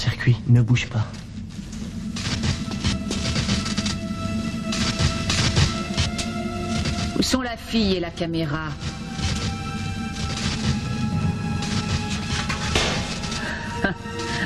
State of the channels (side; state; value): both; identical; correlation 1.00